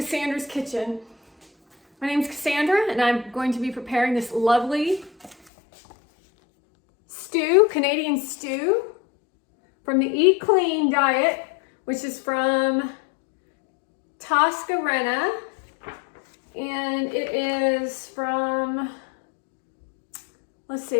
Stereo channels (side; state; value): right; drops out; at 5.4 s